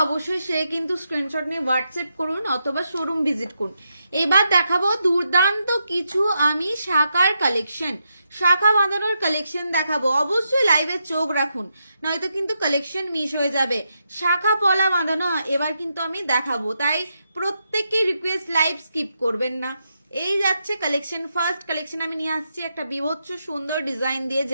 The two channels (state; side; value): inverted; both; correlation -0.83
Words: অবশ্যই সে কিন্তু স্ক্রিনশট নিয়ে হোয়াটসঅ্যাপ করুন অথবা শোরুম ভিজিট করুন। এবার দেখাবো দুর্দান্ত কিছু আমি শাখার কালেকশন, শাখা বাঁধানোর কালেকশন দেখাবো। অবশ্যই লাইভে চোখ রাখুন, নয়তো কিন্তু কালেকশন মিস হয়ে যাবে। শাখা পলা বাঁধানো এবার কিন্তু আমি দেখাবো, তাই প্রত্যেককে রিকোয়েস্ট লাইভ স্কিপ করবেন না। এই যাচ্ছে কালেকশন। ফার্স্ট কালেকশন আমি নিয়ে আসছি একটা বিভৎস সুন্দর ডিজাইন দিয়ে,